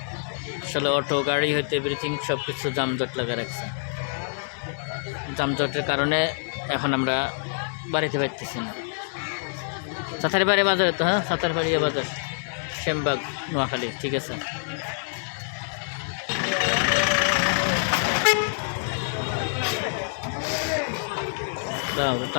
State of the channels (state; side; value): silent; right; digital silence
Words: আসলে অটো গাড়ি হইতে এভরিথিং সব কিছু যানজট লাগা রাখছে। যানজটের কারণে এখন আমরা বাড়িতে পারতেছি না। সাতারপাড়িয়া বাজারে তো, হ্যাঁ সাতারপাড়িয়া বাজার, শ্যামবাগ, নোয়াখালী। ঠিক আছে,